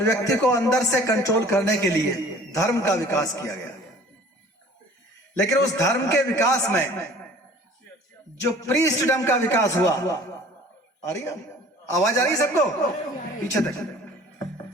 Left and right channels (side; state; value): both; normal; correlation 0.49